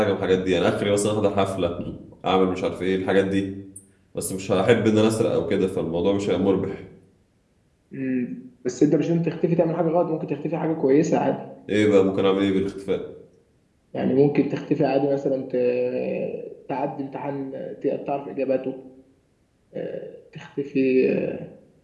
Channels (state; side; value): identical; both; correlation 1.00